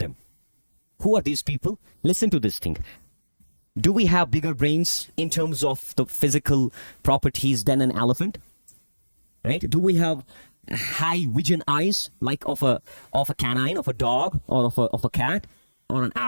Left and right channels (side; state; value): both; inverted; correlation -1.00